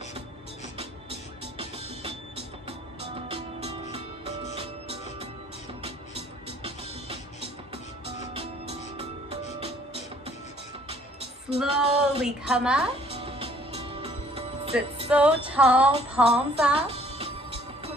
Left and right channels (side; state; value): both; normal; correlation 0.59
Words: Slowly come up. Sit so tall, palms up.